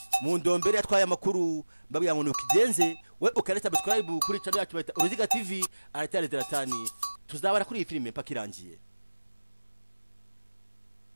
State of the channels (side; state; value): both; inverted; correlation -1.00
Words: mu ndombere yatwaye amakuru babwiye ngo nukigenze we ukari subscribe kuri channel yacu Uruziga TV aratari ZLATAN tuzabara kuri iyi filime paka irangiye.